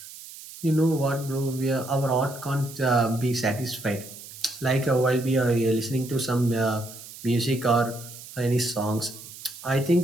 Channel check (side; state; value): right; noise; hiss, 15 dB below the sound